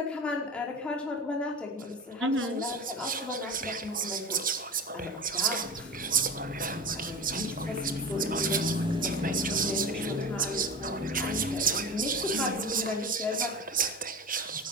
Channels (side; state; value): both; normal; correlation 0.31